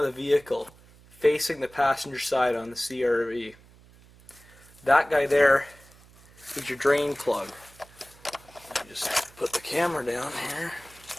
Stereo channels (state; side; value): noise; right; hum, 25 dB below the sound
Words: the vehicle, facing the passenger side on the CRV. That guy there is your drain plug. Just put the camera down here.